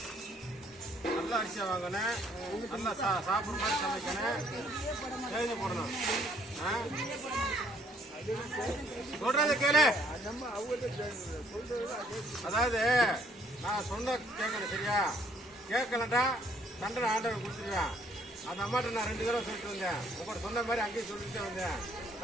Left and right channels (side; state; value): both; normal; correlation 0.64